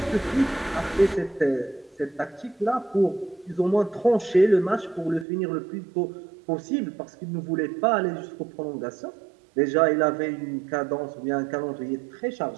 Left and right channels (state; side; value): drops out; left; at 5.2 s